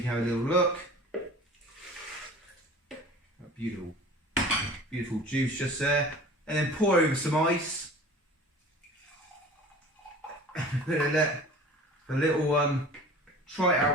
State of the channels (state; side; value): normal; both; correlation 0.42